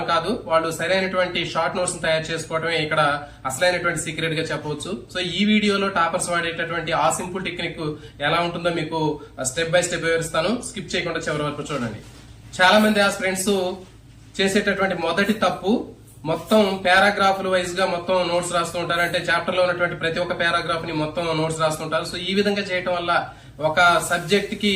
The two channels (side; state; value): both; identical; correlation 1.00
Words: కాదు, వాళ్ళు సరైనటువంటి షార్ట్ నోట్స్ ని తయారు చేసుకోవడమే ఇక్కడ అసలైనటువంటి సీక్రెట్ గా చెప్పవచ్చు. సో ఈ వీడియోలో టాపర్స్ వాడేటటువంటి ఆ సింపుల్ టెక్నిక్ ఎలా ఉంటుందో మీకు స్టెప్ బై స్టెప్ వివరిస్తాను. స్కిప్ చేయకుండా చివరి వరకు చూడండి. చాలా మంది ఆస్పిరెంట్స్ చేసేటటువంటి మొదటి తప్పు మొత్తం పారాగ్రాఫ్లు వైజ్ గా మొత్తం నోట్స్ రాస్తూ ఉంటారు. అంటే చాప్టర్ లో ఉన్నటువంటి ప్రతి ఒక్క పారాగ్రాఫ్ ని మొత్తం నోట్స్ రాస్తుంటారు. సో ఈ విధంగా చేయటం వల్ల ఒక సబ్జెక్ట్ కి